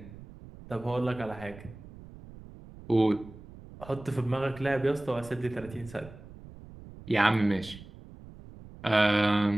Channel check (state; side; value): noise; right; rumble, 17 dB below the sound